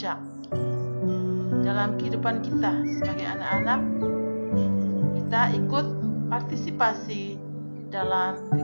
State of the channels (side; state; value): both; inverted; correlation -1.00